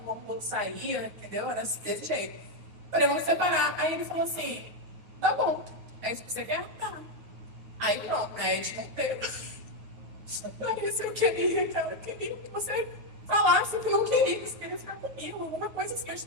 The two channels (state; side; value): late; left; 9.4 ms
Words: o outro saía, entendeu? Era desse jeito. Falei, vamos separar. Aí ele falou assim, tá bom. É isso que você quer? Tá. Aí pronto, né? A gente não teve. Larissa, eu queria, cara. Eu queria que você falasse que não queria, que você queria ficar comigo. Alguma coisa assim, eu